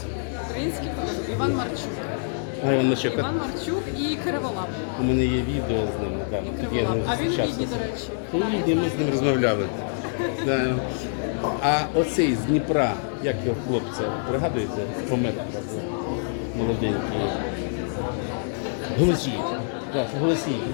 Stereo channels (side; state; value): right; silent; digital silence